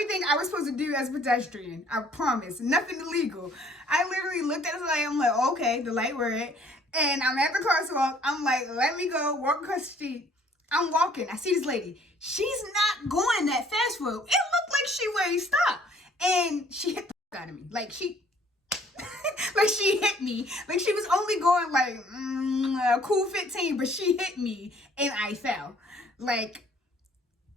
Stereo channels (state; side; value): normal; both; correlation 0.58